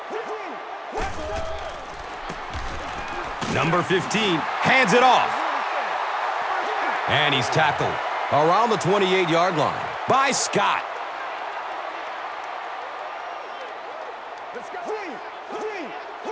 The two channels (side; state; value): both; identical; correlation 1.00